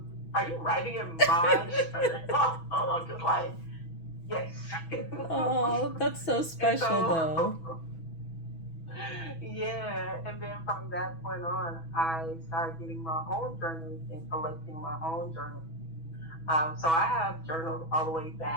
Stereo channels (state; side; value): late; right; 6.1 ms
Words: you writing in my journal? I'm just like, yes. Oh, that's so And special so, though. yeah. And then from that point on, I started getting my own journals and collecting my own journals. So I have journals all the way